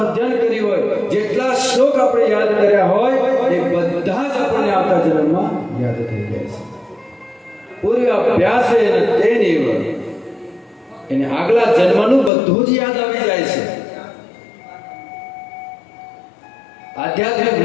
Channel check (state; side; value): drops out; right; at 12.3 s